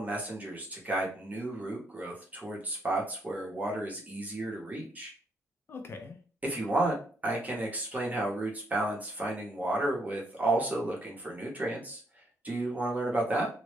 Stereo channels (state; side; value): normal; both; correlation 0.74